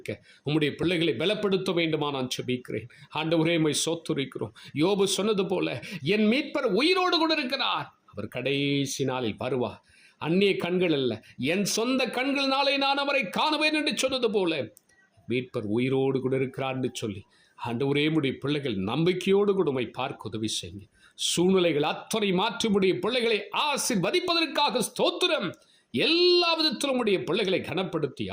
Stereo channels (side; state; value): both; identical; correlation 1.00